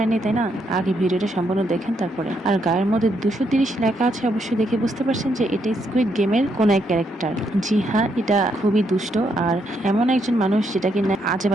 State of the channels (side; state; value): both; normal; correlation 0.76